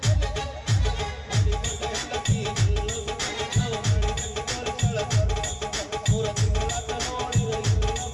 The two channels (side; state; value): both; identical; correlation 1.00